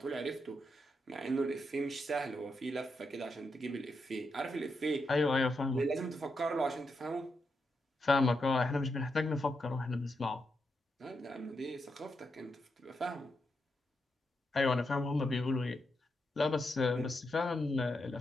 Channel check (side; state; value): both; normal; correlation 0.84